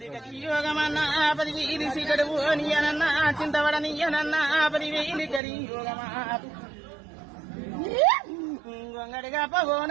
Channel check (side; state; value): left; drops out; at 5.4 s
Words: యోగమన్నా 10,000 సిగడు నీయనన్నా చింతవడనీయనన్నా 10,000 కరి యోగమా గొంగడిగా